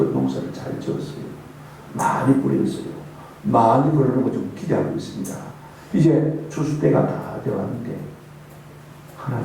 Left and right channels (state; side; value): identical; both; correlation 1.00